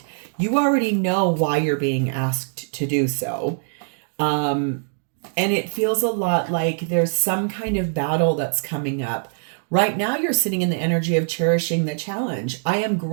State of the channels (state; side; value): silent; left; digital silence